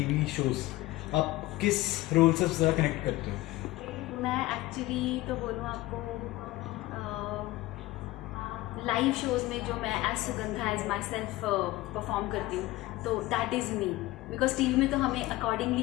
shows. आप किस रोल से ज़्यादा कनेक्ट करते हो? मैं एक्चुअली तो बोलूँ आपको लाइव शोज़ में जो मैं as Sugandha as myself perform करती हूँ, तो that is me. Because TV में तो हमें अकॉर्डिंगली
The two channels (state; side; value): quieter; right; 18.4 dB